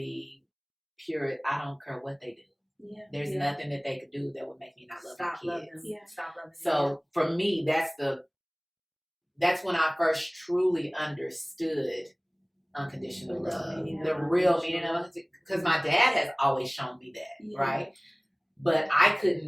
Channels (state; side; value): identical; both; correlation 1.00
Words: pure. I don't care what they do. Yeah. There's Yeah. nothing that they could do that would make me not love Stop my loving kids. them. Yeah. Stop loving them. So for me, that's when I first truly understood unconditional The real love, meaning of the real meaning unconditional of it. Because my dad has always shown me that, Yeah. right? But I